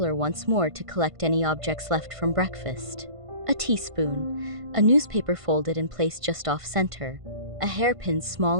once more to collect any objects left from breakfast. A teaspoon, a newspaper folded and placed just off-center, a hairpin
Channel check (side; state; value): left; late; 1.5 ms